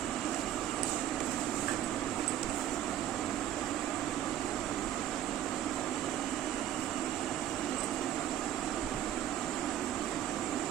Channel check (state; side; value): quieter; left; 11.3 dB